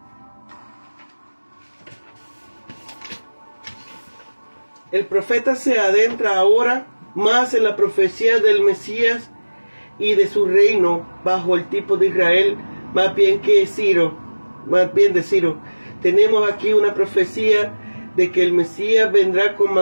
El profeta se adentra ahora más en la profecía del Mesías y de su reino bajo el tipo de Israel, más bien de Ciro. Tenemos aquí una profecía de que el Mesías vendrá con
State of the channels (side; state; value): both; inverted; correlation -1.00